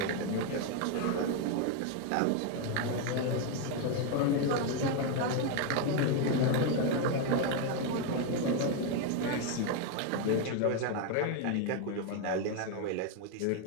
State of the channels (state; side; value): different; both; correlation 0.01